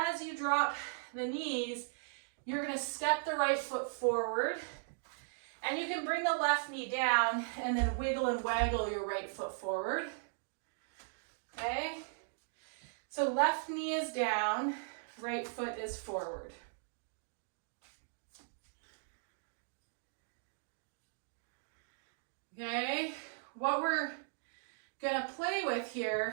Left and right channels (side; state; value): left; silent; digital silence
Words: you drop the knees, you're gonna step the right foot forward, and you can bring the left knee down and then wiggle and waggle your right foot forward. Okay? So left knee is down, right foot is forward. Okay, what we're gonna play with